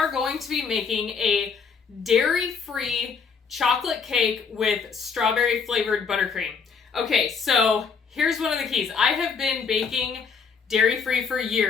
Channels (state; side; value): quieter; right; 5.7 dB